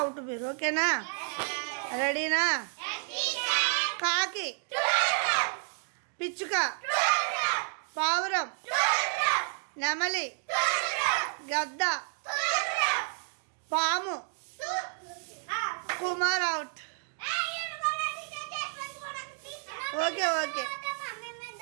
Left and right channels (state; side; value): silent; left; 57 dB below the other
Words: మీరు. ఓకేనా? రెడీనా? కాకి, పిచ్చుక, పావురం, నెమలి, గద్ద, పాము. Kumar out. Okay okay